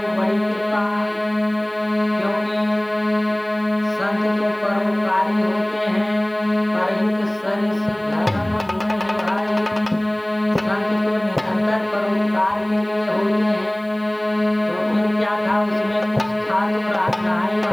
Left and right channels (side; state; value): right; noise; hiss, 29 dB below the sound